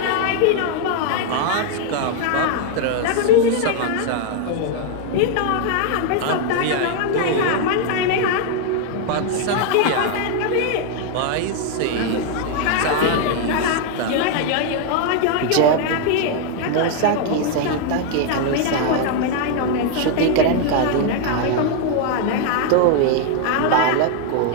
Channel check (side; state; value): both; different; correlation 0.00